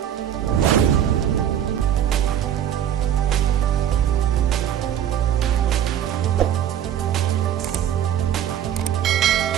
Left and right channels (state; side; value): quieter; left; 10.2 dB